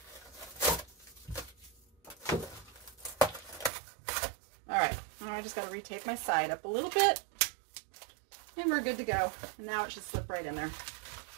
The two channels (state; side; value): drops out; left; at 3.7 s